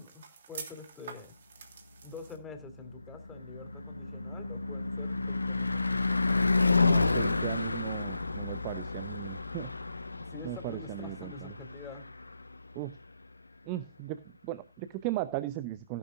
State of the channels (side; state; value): both; inverted; correlation -0.80